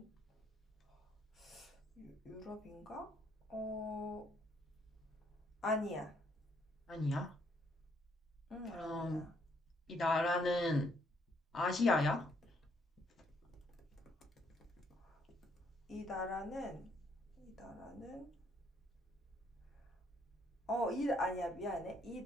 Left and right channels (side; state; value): both; normal; correlation 0.70